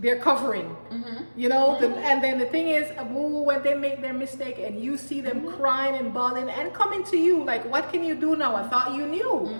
covering, and then the thing is, when they make their mistake and you see them crying and bawling and coming to you, like, what can you do now? I thought you knew.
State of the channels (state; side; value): inverted; both; correlation -1.00